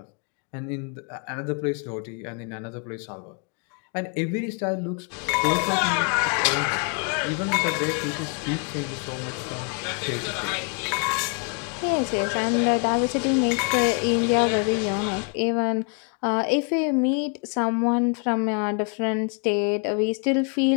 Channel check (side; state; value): right; quieter; 36.7 dB